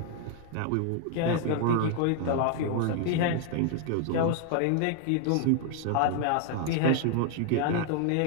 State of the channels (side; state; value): both; different; correlation 0.00